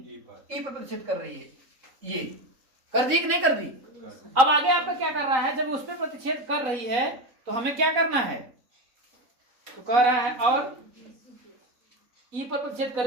E पर प्रतिच्छेद कर रही है। ये कर दी कि नहीं कर दी। अब आगे आपका क्या कर रहा है, जब उस पर प्रतिच्छेद कर रही है तो हमें क्या करना है, तो कह रहा है और E पर प्रतिच्छेद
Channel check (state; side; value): late; left; 4.0 ms